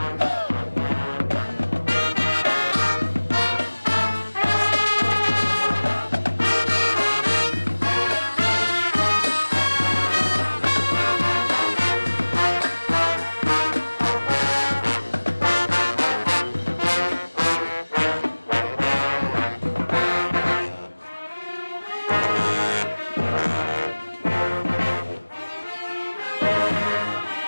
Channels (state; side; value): inverted; both; correlation -1.00